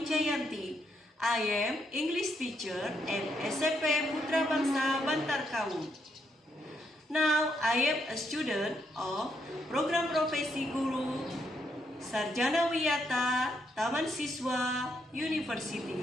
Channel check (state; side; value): normal; both; correlation 0.77